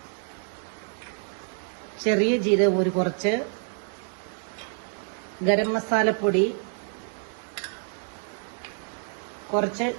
ചെറിയ ജീരകം ഒരു കുറച്ച്, ഗരം മസാലപ്പൊടി, കുറച്ച്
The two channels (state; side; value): silent; left; 60 dB below the other